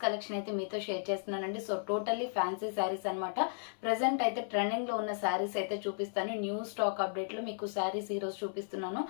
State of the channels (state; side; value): silent; right; 55 dB below the other